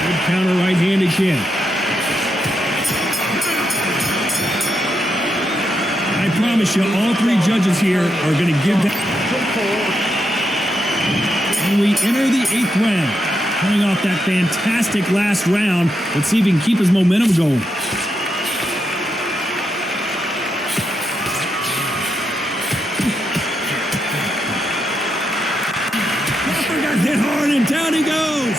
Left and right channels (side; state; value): both; normal; correlation 0.83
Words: Good counter right hand again. I promise you, all 3 judges here are going to give that. And we enter the 8th round. Coming off that fantastic last round, let's see if he can keep his momentum going. down he goes.